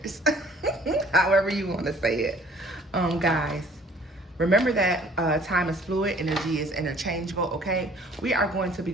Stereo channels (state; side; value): normal; both; correlation 0.55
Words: However you want to say it. Guys, remember that time is fluid, energy is interchangeable, okay? We are going to be